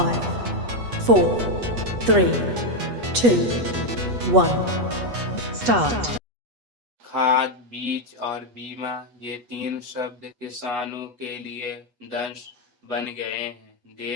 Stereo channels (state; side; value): late; left; 8.3 ms